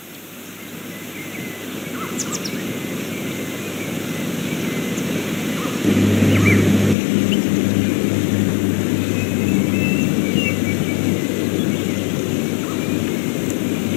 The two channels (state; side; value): drops out; right; at 7.0 s